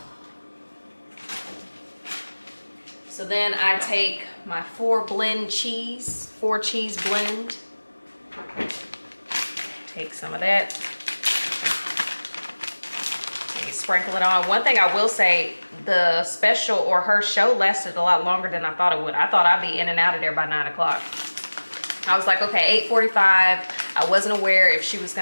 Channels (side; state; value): both; inverted; correlation -1.00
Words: So then I take my 4 cheese blend. Take some of that. Sprinkle it on. One thing I will say, the special or her show lasted a lot longer than I thought it would. I thought I'd be in and out of there by 9 o'clock. I was like, okay, 8:45. I wasn't aware if she was